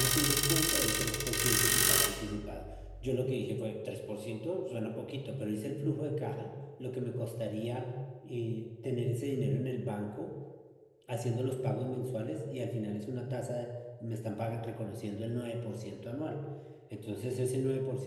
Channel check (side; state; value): both; identical; correlation 1.00